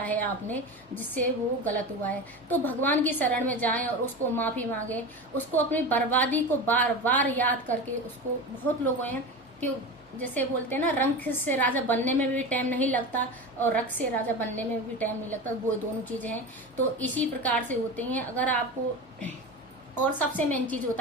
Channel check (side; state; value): both; normal; correlation 0.26